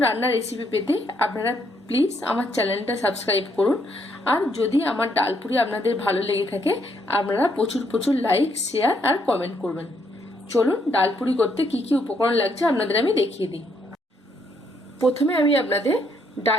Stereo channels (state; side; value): normal; both; correlation 0.72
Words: রান্নার রেসিপি পেতে আপনারা প্লিজ আমার চ্যানেলটা সাবস্ক্রাইব করুন। আর যদি আমার ডালপুরি আপনাদের ভালো লেগে থাকে আপনারা প্রচুর প্রচুর লাইক, শেয়ার আর কমেন্ট করবেন। চলুন ডালপুরি করতে কি কি উপকরণ লাগছে আপনাদের আমি দেখিয়ে দিই। প্রথমে আমি আপনাদের